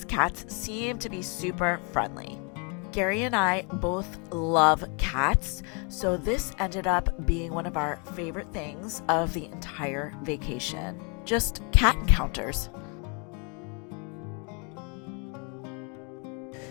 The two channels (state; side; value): quieter; right; 34.9 dB